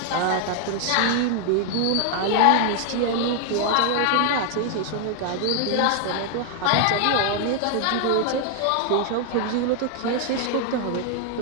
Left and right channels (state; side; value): different; both; correlation 0.00